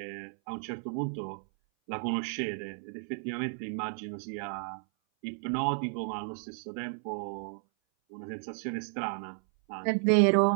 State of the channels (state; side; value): silent; left; 56 dB below the other